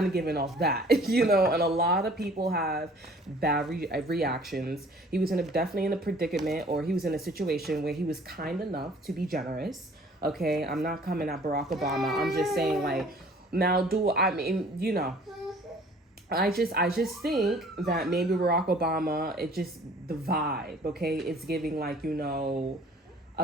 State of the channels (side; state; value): both; normal; correlation 0.53